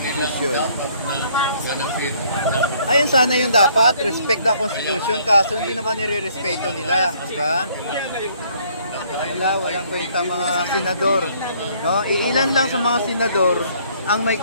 dapat na ganapin. ayun sana yung dapat, respect the Constitution, kaso hindi naman nire-respeto nila, di ba? Walang kwenta mga senador, no? Iilan lang sa mga senador ang may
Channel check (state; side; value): inverted; both; correlation -0.62